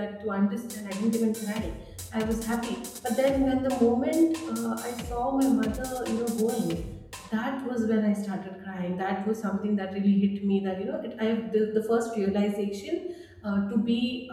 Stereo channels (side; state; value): both; identical; correlation 1.00